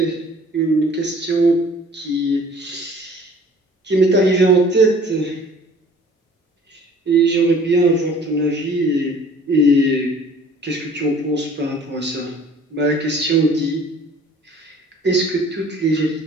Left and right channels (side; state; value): both; normal; correlation 0.51